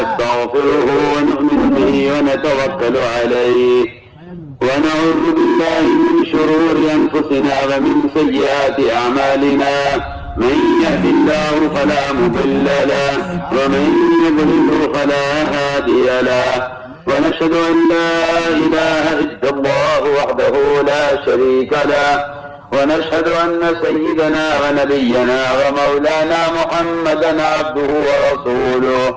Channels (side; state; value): both; identical; correlation 1.00